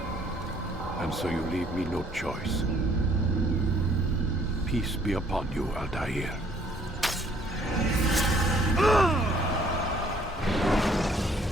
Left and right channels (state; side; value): normal; both; correlation 0.62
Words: And so you leave me no choice. Peace be upon you, Altair.